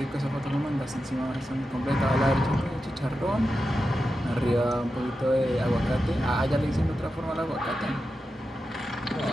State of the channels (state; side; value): normal; both; correlation 0.90